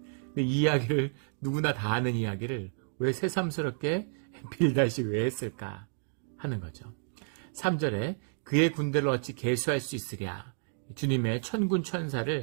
이 이야기를, 누구나 다 아는 이야기를 왜 새삼스럽게 빌닷이 왜 했을까 하는 거죠. 3절에 그의 군대를 어찌 계수할 수 있으랴. 주님의 천군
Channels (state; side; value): silent; left; digital silence